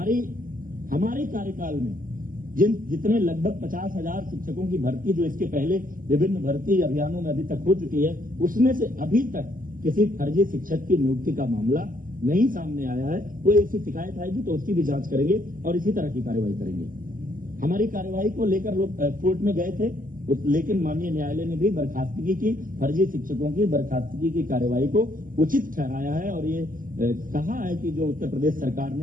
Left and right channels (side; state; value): left; late; 0.41 ms